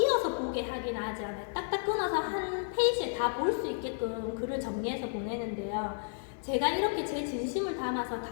보게 하긴 하지 않아요. 딱딱 끊어서 한 페이지에 다 볼 수 있게끔 글을 정리해서 보내는데요. 제가 이렇게 제 진심을 담아서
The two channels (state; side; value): silent; right; digital silence